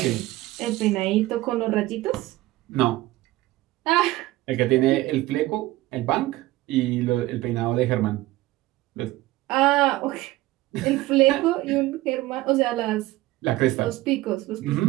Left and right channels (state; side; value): quieter; left; 17.8 dB